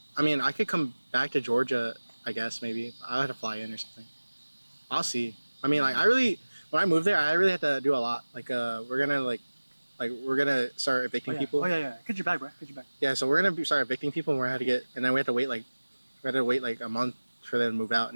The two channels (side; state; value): both; inverted; correlation -1.00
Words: I mean, I could come back to Georgia. I guess maybe I'll have to fly in or something. I'll see. I mean, like when I moved there, I really had to do a lot. Like we're gonna start evicting people. Oh yeah. Get your bag, bro. Get your bag. Yeah, so we're gonna start evicting people, and and then we have to wait like a month for them to move out,